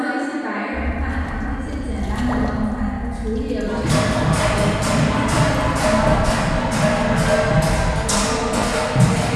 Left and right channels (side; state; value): both; identical; correlation 1.00